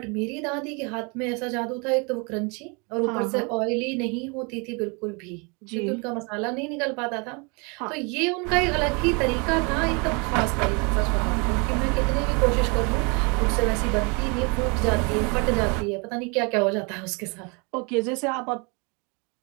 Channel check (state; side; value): quieter; left; 31.8 dB